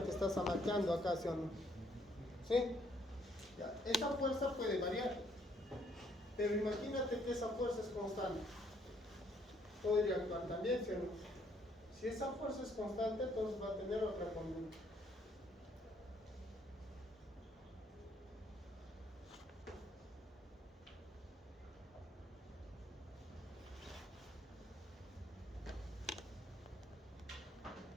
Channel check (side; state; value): both; normal; correlation 0.67